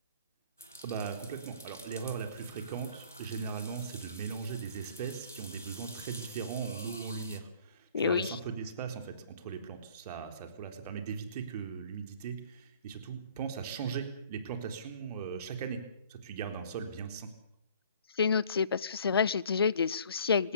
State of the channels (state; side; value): inverted; both; correlation -0.54